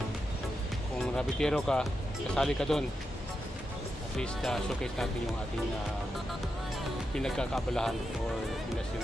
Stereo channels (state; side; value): normal; both; correlation 0.87